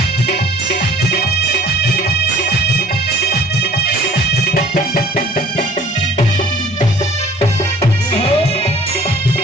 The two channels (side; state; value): both; normal; correlation 0.51